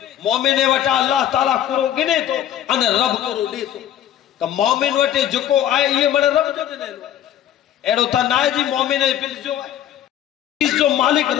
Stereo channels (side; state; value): right; quieter; 11.1 dB